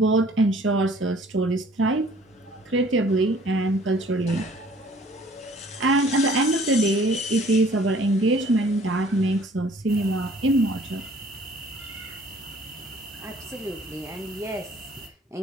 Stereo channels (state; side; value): normal; both; correlation 0.55